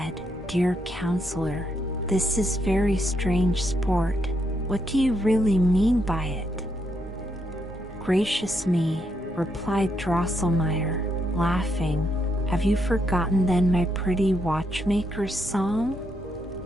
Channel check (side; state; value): left; noise; rumble, 20 dB below the sound